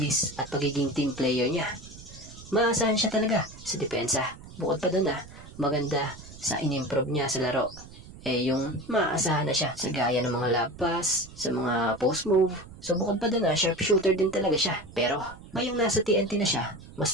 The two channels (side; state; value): right; noise; rumble, 17 dB below the sound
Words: at pagiging team player niya. Maasahan siya talaga sa depensa. Bukod pa doon maganda sa in-improve niya sa laro. Yung maasahan na siya sa gaya ng mga lob pass, sa mga post move. So bukod pa doon sharpshooter din talaga siya. Pero ngayong nasa TNT na siya,